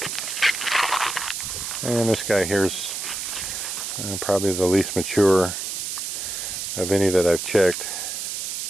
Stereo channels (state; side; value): noise; right; hiss, 4 dB below the sound